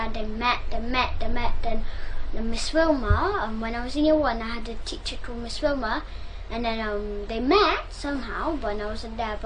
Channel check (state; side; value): identical; both; correlation 1.00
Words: they met. Then Miss Wilma, when I was in year 1, I had a teacher called Miss Wilma, and then they met somehow when I wasn't there,